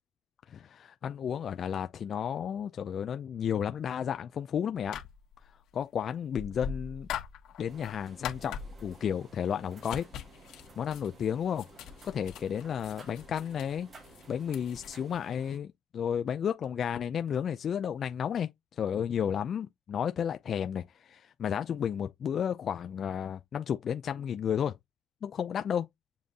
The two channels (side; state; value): right; quieter; 8.0 dB